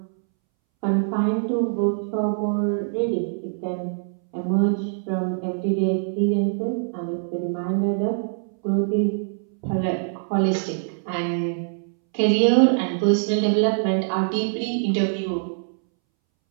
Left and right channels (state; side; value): silent; left; 63 dB below the other